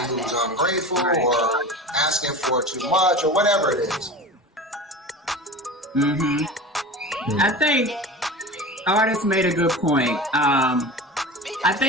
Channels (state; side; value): normal; both; correlation 0.32